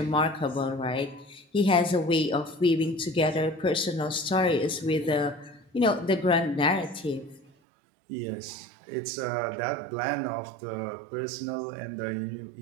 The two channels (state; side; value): drops out; left; at 7.5 s